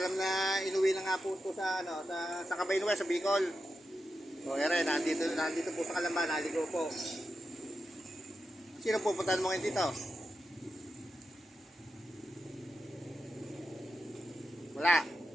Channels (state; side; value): normal; both; correlation 0.89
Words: na inuwi na nga po ito sa Cabaynuel, sa Bicol. Ere, nandito po sa Kalamba, naligo po. Sino pupuntahan mo ngayon dito? Wala.